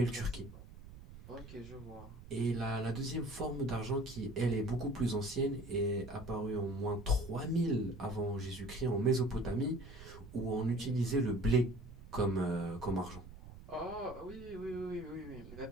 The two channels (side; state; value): right; noise; rumble, 16 dB below the sound